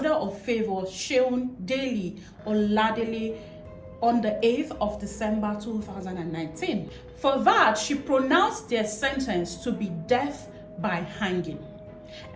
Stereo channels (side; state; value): both; identical; correlation 1.00